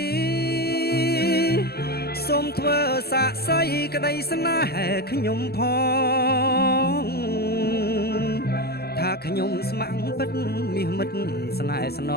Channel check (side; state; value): right; late; 0.46 ms